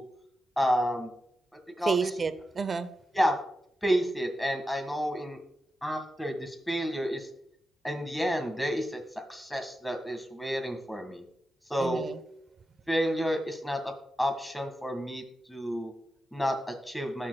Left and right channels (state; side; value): normal; both; correlation 0.90